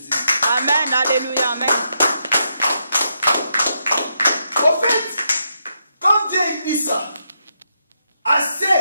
Amen. Alléluia. Amen. En fait, quand Dieu dit ça, à ceux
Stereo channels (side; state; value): both; inverted; correlation -0.81